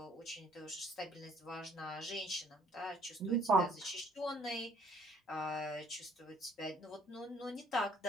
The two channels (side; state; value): both; normal; correlation 0.61